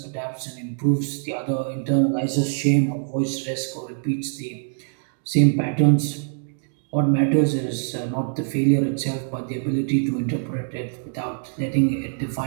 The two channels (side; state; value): left; silent; digital silence